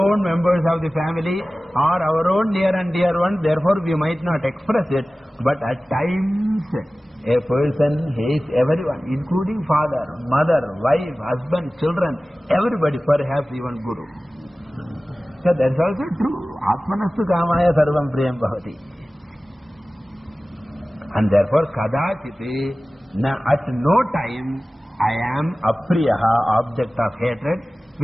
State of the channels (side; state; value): both; normal; correlation 0.97